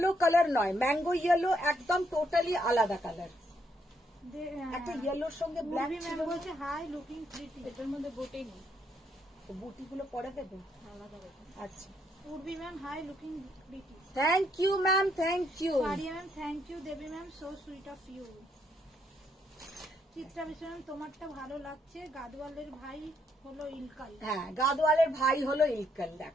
কালার নয়, ম্যাঙ্গো ইয়েলো একদম টোটালি আলাদা কালার। একটা ইয়েলোর সঙ্গে ব্ল্যাক ছিল। ম্যাম বলছে হাই লুকিং প্রিটি। এটার মধ্যে বুটি নেই, বুটি গুলো পরে দেবে। আলাদা করে। আচ্ছা, Urbi ma'am hi looking pretty. Thank you ma'am, thank you. Paria ma'am thank you. Debi ma'am so sweet of you. Chitra Biswas ma'am তোমারটা ভালো লাগছে, গাদওয়ালের ভাই হলো ইলকাল। হ্যাঁ, গাদওয়ালের ভাই হলো ইলকাল,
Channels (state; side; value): normal; both; correlation 0.74